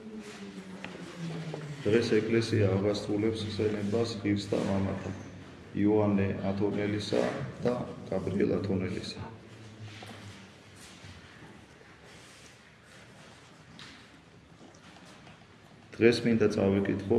დღეს ეკლესია აღასრულებს ხსენებას ღირსთა მამათა იოანე ათონელისა და გაბრიელ ათონელისა. დღეს მინდა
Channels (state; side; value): identical; both; correlation 1.00